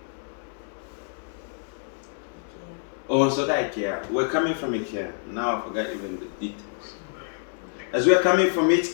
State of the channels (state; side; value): silent; right; digital silence